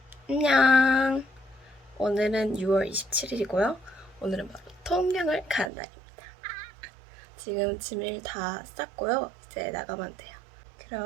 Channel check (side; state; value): left; drops out; at 5.7 s